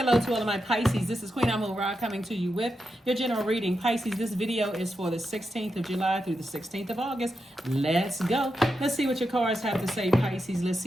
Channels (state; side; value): normal; both; correlation 0.87